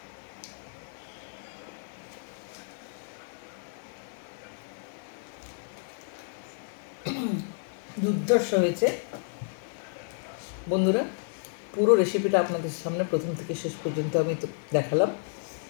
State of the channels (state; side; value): silent; right; digital silence